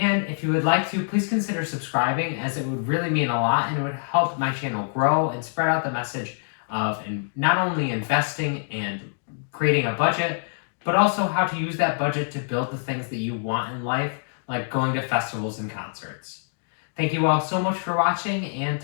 if you would like to, please consider subscribing as it would really mean a lot and it would help my channel grow and spread out the message of not only investing and creating a budget, but also how to use that budget to build the things that you want in life, like going to festivals and concerts. Thank you all so much for watching and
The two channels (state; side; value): silent; right; digital silence